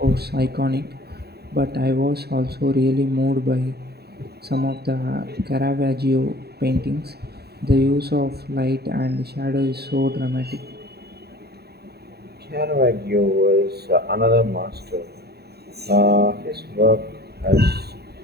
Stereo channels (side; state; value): left; late; 0.47 ms